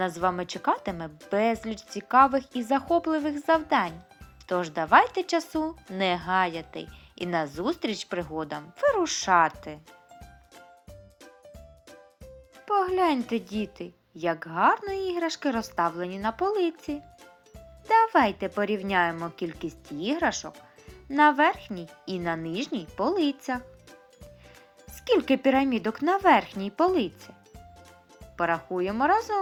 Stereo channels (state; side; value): identical; both; correlation 1.00